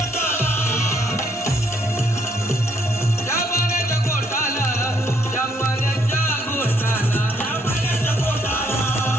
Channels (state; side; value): normal; both; correlation 0.70